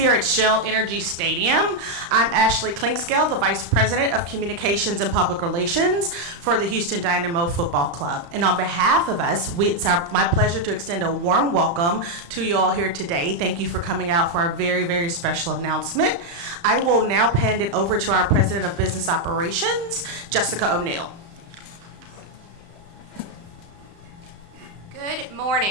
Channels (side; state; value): left; late; 35 ms